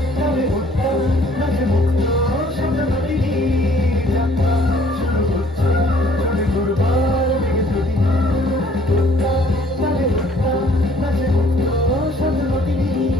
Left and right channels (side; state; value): both; normal; correlation 0.59